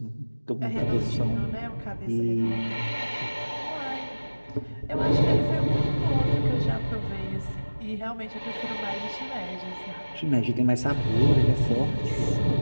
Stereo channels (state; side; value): inverted; both; correlation -1.00